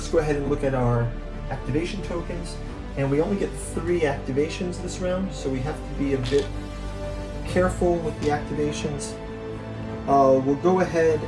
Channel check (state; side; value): identical; both; correlation 1.00